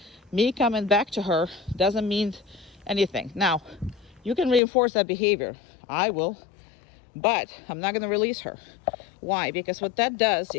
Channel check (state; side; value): drops out; right; at 4.6 s